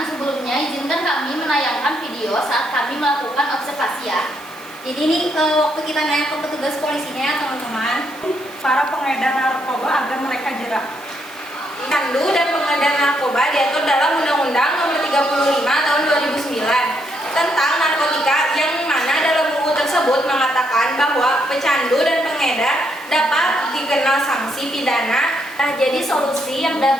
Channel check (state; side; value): noise; right; hiss, 23 dB below the sound